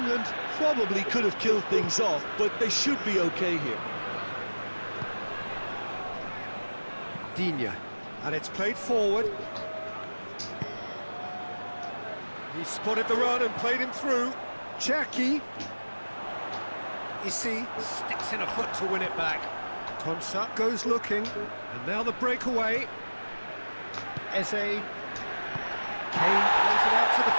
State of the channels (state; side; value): inverted; both; correlation -1.00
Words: probably could have killed things off, but they should be okay here. Digne, and it's played forward. He spotted the run and played him through. Cherki. Issy sticks in a foot to win it back. Konsa goes looking, and now the breakaway. Eze. Kane plays it out to the